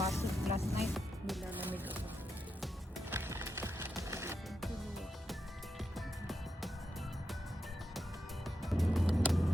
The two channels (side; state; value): both; normal; correlation 0.86